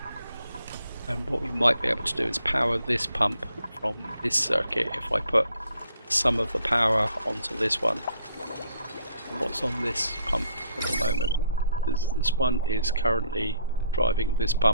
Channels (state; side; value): inverted; both; correlation -0.66